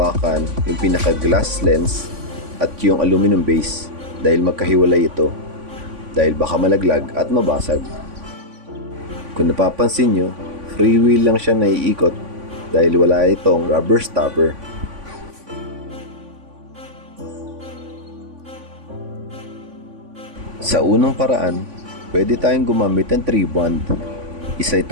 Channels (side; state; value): left; late; 3.5 ms